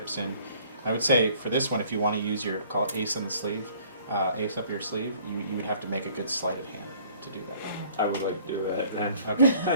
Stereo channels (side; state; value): both; inverted; correlation -0.56